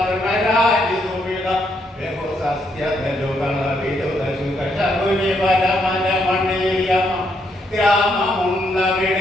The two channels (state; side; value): normal; both; correlation 0.75